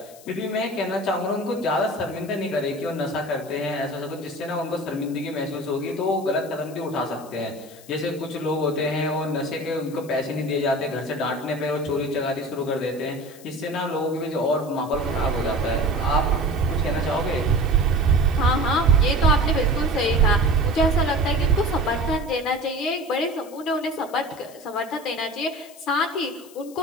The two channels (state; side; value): noise; left; hiss, 22 dB below the sound